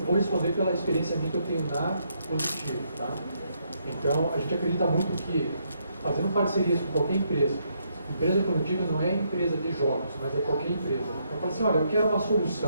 vou responder pela experiência minha que eu tenho na Positivo, tá? Então, a gente acredita muito que, fazendo parcerias com qualquer empresa, Empresa, quando eu digo, não é empresa de jogos, mas é qualquer empresa. Eu falo assim, olha, eu quero uma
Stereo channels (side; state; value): both; inverted; correlation -0.75